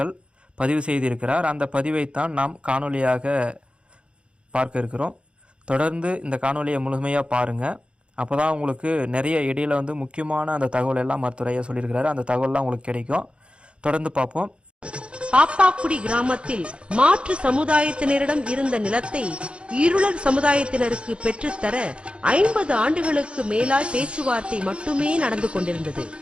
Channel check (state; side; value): late; left; 0.057 ms